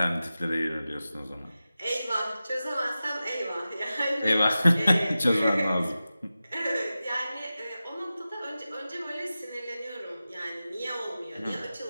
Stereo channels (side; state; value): both; inverted; correlation -0.94